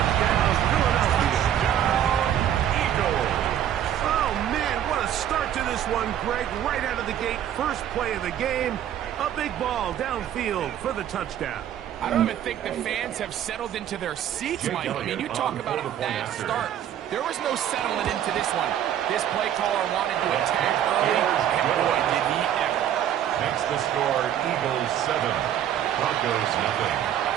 Philadelphia. Eagles. Oh, man, what a start to this one, Greg. Right out of the gate, first play of the game. A big ball downfield for the touchdown. I don't even think the fans have settled into their seats, Mike. I mean, you talk about a fast start. There was no settling into this one. This play caller wanted to attack early, and boy, did he ever. Makes the score Eagles 7, Broncos nothing.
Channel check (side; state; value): left; quieter; 10.6 dB